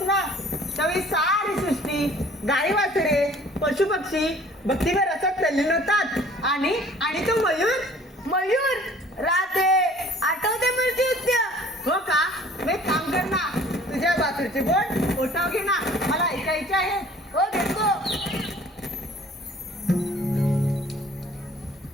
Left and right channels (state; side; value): normal; both; correlation 0.52